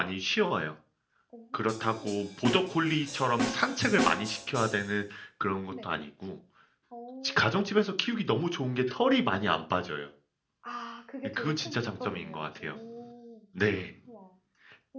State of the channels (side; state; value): both; identical; correlation 1.00